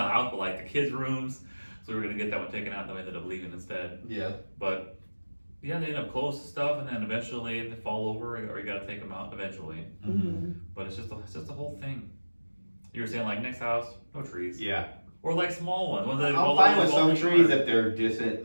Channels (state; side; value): inverted; both; correlation -1.00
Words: house but like the kids' rooms. So we were gonna get that one taken out, and then we ended up leaving instead. Yeah. But yeah, they end up close to stuff, and then eventually they fall over, or you gotta take them out eventually. But it's just the whole thing. You were saying like next house, no trees. Yeah. Or like small ones. I'm fine with some trees if they're